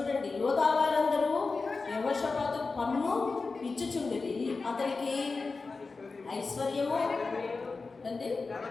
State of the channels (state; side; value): quieter; right; 4.1 dB